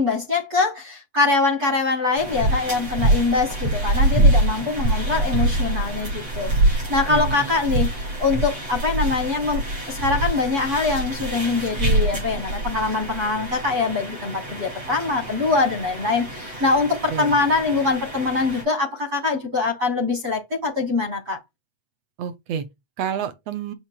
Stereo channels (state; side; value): late; left; 8.1 ms